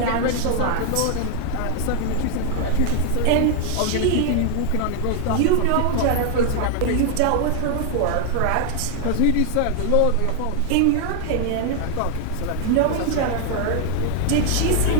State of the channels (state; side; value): different; both; correlation 0.00